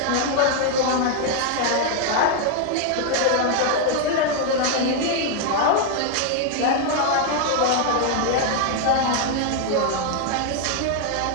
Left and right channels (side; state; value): both; different; correlation 0.00